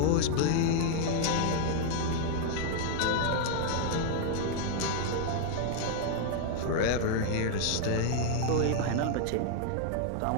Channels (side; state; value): both; different; correlation 0.00